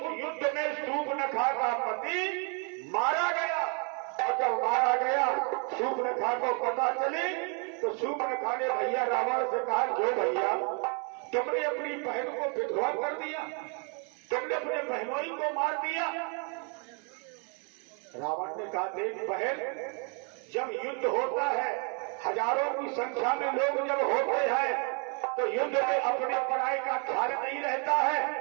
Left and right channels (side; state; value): left; quieter; 36.6 dB